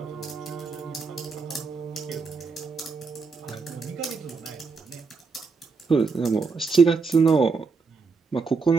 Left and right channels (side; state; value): left; quieter; 4.6 dB